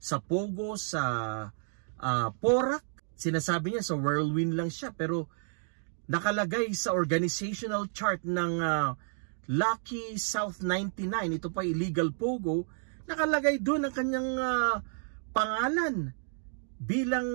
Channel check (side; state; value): left; silent; digital silence